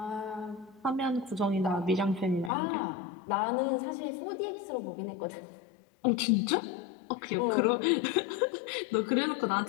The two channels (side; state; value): right; drops out; at 2.5 s